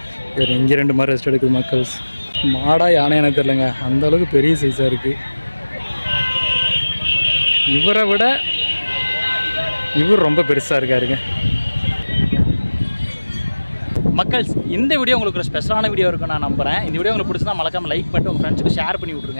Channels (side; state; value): both; inverted; correlation -1.00